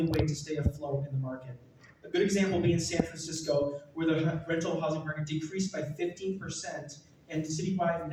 way to stay afloat in the market. A good example being San Francisco, where the rental housing market decreased by 15% and citywide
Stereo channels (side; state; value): both; identical; correlation 1.00